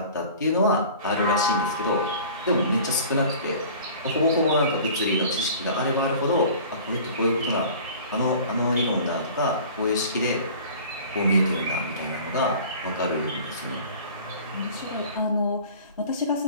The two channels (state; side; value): inverted; both; correlation -0.44